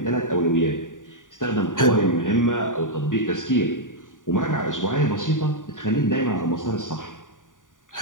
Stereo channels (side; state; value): right; late; 0.88 ms